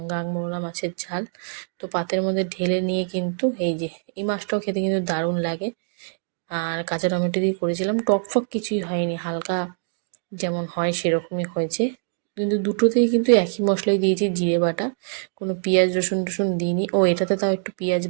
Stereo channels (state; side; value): silent; left; digital silence